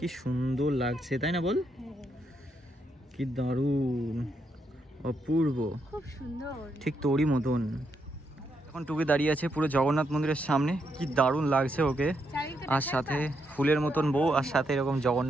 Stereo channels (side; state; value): both; normal; correlation 0.79